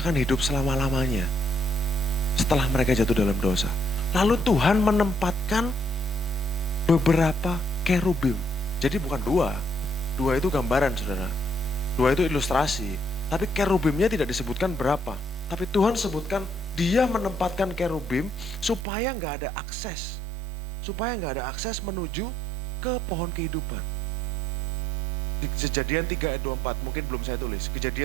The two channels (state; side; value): drops out; left; at 18.9 s